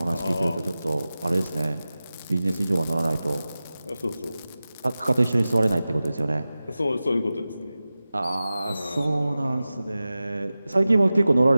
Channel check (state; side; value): inverted; both; correlation -0.96